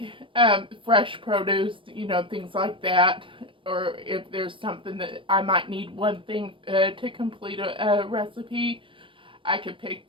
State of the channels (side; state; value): left; late; 0.25 ms